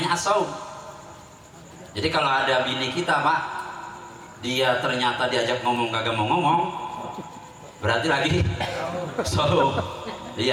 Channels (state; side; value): identical; both; correlation 1.00